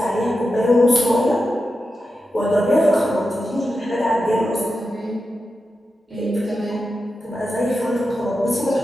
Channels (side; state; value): both; normal; correlation 0.90